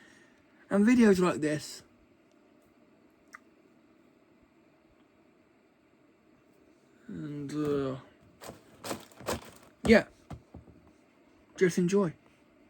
and videos like this. And yeah, Just enjoy.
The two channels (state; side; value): identical; both; correlation 1.00